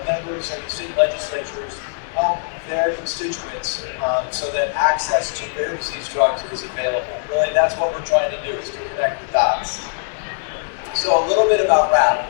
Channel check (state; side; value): silent; right; digital silence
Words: members of the state legislatures help their constituents so that access to rare disease drugs is available. Really, that's what we're trying to do, is to connect the dots. So a little bit about RAAP.